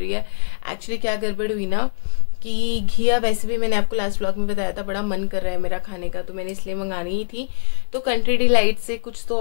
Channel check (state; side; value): silent; right; digital silence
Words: है। एक्चुअली क्या गड़बड़ हुई ना कि घिया वैसे भी मैंने आपको लास्ट व्लॉग में बताया था बड़ा मन कर रहा है मेरा खाने का, तो मैंने इसलिए मंगानी ही थी। तो कंट्री डिलाइट से कुछ तो